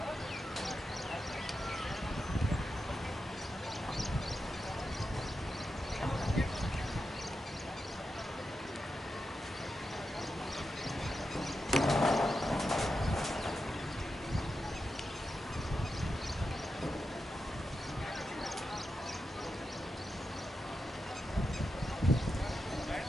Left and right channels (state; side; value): normal; both; correlation 0.89